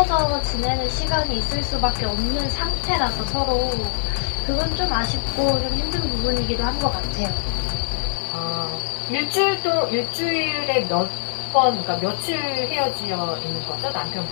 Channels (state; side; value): silent; right; digital silence